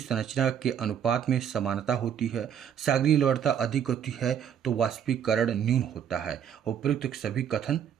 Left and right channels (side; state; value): left; quieter; 8.7 dB